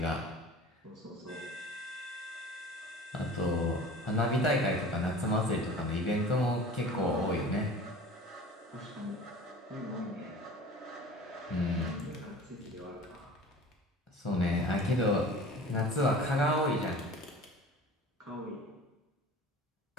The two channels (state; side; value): normal; both; correlation 0.41